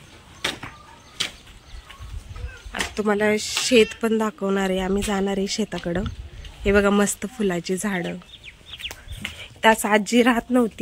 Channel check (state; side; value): identical; both; correlation 1.00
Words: आता तुम्हाला शेत पण दाखवणार आहे, आम्ही जाणार आहे शेताकडं। हे बघा, मस्त फुलाची झाडं। त्यास आजी राहत